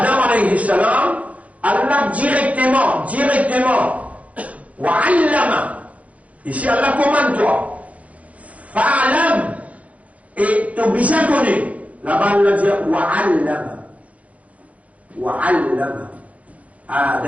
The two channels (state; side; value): late; left; 0.067 ms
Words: alayhi salam, Allah directement, wa allama, ici Allah commande toi, fa'alam, et tu as besoin de connaître, Là-bas, il dit wa'allama. Wa'allama.